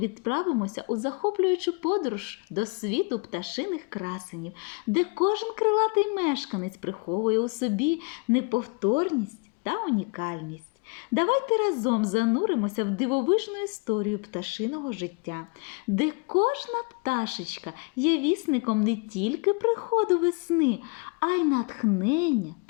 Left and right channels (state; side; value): quieter; right; 32.1 dB